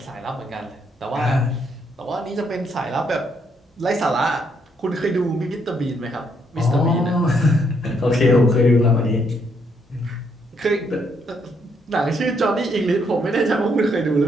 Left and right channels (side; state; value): both; normal; correlation 0.73